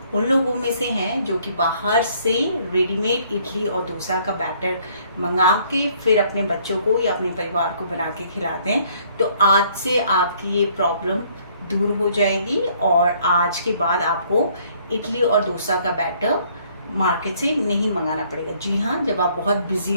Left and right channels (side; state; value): both; inverted; correlation -0.63